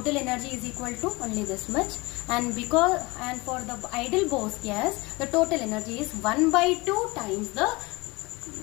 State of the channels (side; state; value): right; quieter; 24.1 dB